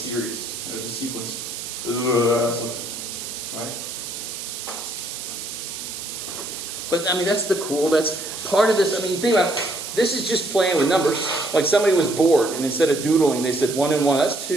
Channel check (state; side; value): noise; right; hiss, 8 dB below the sound